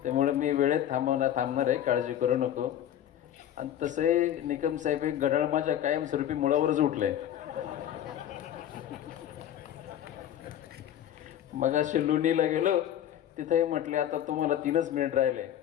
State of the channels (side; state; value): right; quieter; 11.0 dB